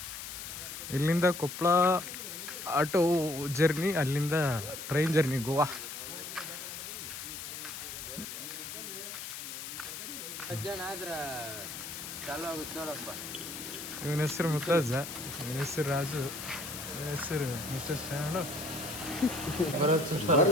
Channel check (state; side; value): noise; left; hiss, 8 dB below the sound